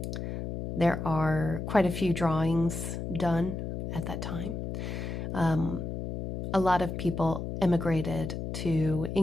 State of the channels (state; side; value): noise; left; hum, 5 dB below the sound